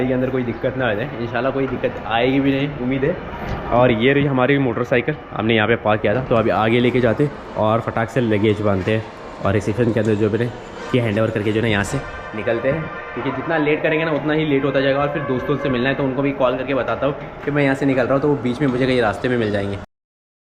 के अंदर कोई दिक्कत ना आ जाए। इंशाल्लाह कोई दिक्कत आएगी भी नहीं, उम्मीद है। और ये रही हमारी मोटरसाइकिल, हमने यहाँ पे पार्क किया था, तो अभी आगे लेके जाते और फटाक से लगेज बांधते हैं और रिसेप्शन के अंदर जो मैंने ये हैंड ओवर करके जो है ना यहाँ से निकलते हैं। क्योंकि जितना लेट करेंगे ना उतना ही लेट होता जाएगा और फिर दोस्तों से मिलना है, तो उनको भी कॉल करके बताता हूँ कि मैं यहाँ से निकल रहा हूँ, तो वो बीच में मुझे कहीं रास्ते में मिल जाएंगे।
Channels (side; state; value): both; identical; correlation 1.00